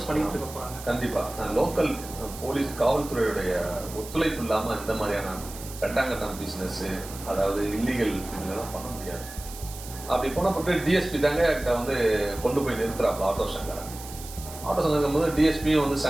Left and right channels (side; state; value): right; noise; hiss, 14 dB below the sound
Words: பண்ணிட்டு இருக்க போறாங்க. கண்டிப்பா லோக்கல் போலீஸ் காவல்துறையுடைய ஒத்துழைப்பு இல்லாம இந்த மாதிரியான கட்டாங்கட்டம் பிசினஸ், அதாவது இல்லீகல் இதெல்லாம் பண்ண முடியாது. அப்படி போனப்பட்டு டிஎஸ்பி தாங்க கிட்ட வந்து கொண்டு போய் நிறுத்துறாப்ல ஆட்டோ சங்கரை. ஆட்டோ சங்கர் போது டிஎஸ்பியும் வந்து